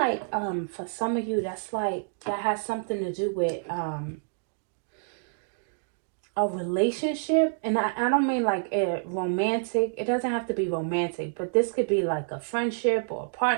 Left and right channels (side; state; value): left; silent; digital silence